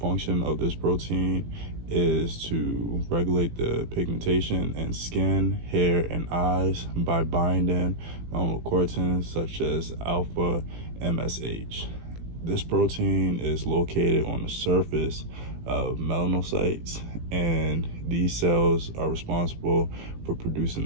function of this protein is to regulate the pigmentation in skin, hair, and eyes by binding melanocortins such as alpha MSH. This protein is located on the surface of melanocytes, and these cells are responsible for producing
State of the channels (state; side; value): late; left; 18 ms